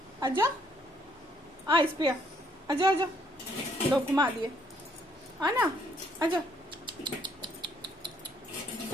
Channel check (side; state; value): both; normal; correlation 0.68